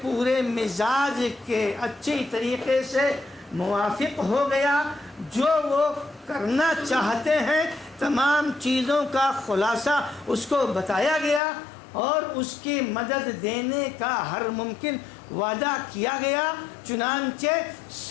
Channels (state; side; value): drops out; right; at 11.4 s